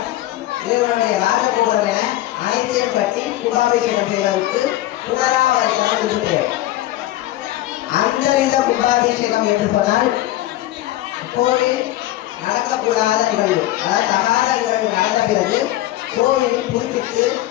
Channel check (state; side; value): quieter; right; 15.3 dB